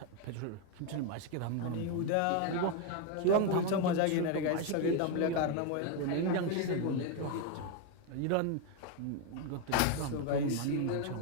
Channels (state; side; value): different; both; correlation 0.01